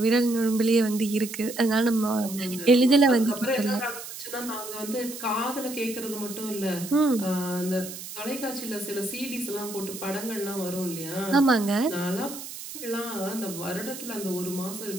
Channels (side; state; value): right; noise; hiss, 11 dB below the sound